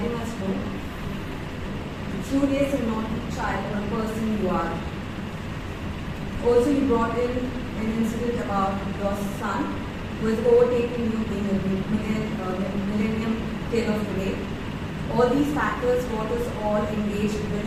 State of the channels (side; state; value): both; identical; correlation 1.00